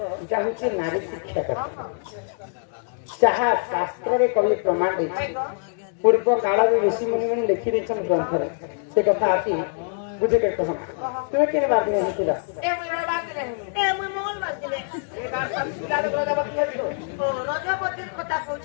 चाहूँ नारी शिक्षा करता जहाँ शास्त्र रे कवि प्रमाण देछि पूर्व काल में ऋषि मुनि मैंने लिखि देछन ग्रंथ रे से कथा आती बुझे के कहना तुम केने बात नहीं हितिला ए मुई बात नहीं ए मुई मंगल बात दिले ए बात सब सिला दे रजबती है तो ओ रजपति कथा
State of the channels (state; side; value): silent; right; digital silence